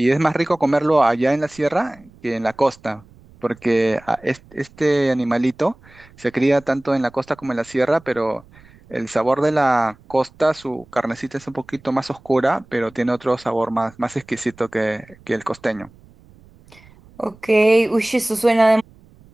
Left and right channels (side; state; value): right; noise; rumble, 26 dB below the sound